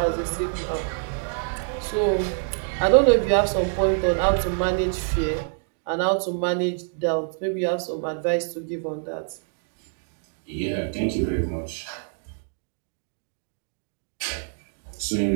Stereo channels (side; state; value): left; silent; 61 dB below the other